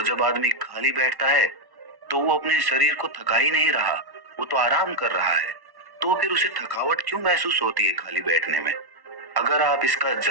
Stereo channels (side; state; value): left; late; 1.1 ms